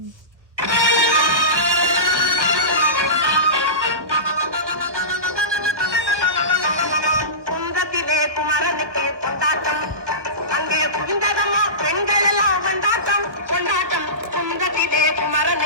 குன்றத்திலே குமரனுக்கு கொண்டாட்டம், அங்கே புரிந்ததம்மா பெண்கள் எல்லாம் கொண்டாட்டம் கொண்டாட்டம். குன்றத்திலே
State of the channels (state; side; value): late; left; 1.1 ms